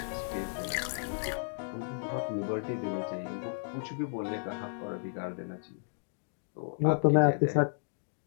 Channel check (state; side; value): silent; right; digital silence